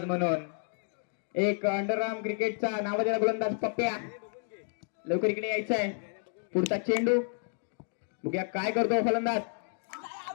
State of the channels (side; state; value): right; silent; 57 dB below the other